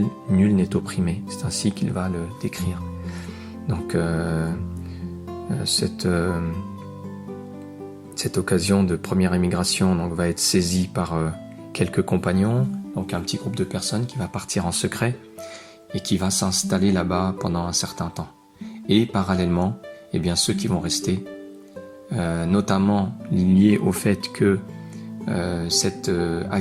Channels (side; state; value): both; identical; correlation 1.00